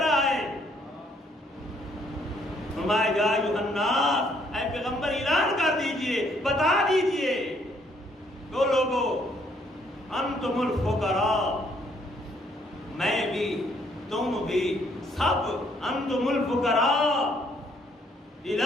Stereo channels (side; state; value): both; normal; correlation 0.67